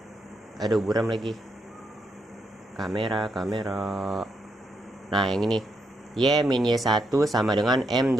Aduh, buram lagi. Kamera. Nah, yang ini. Y min Y1 sama dengan M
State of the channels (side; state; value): both; normal; correlation 0.80